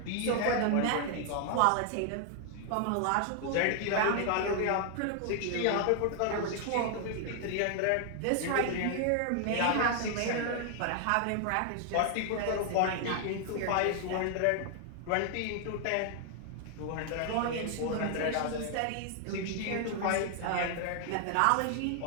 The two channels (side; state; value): both; different; correlation 0.00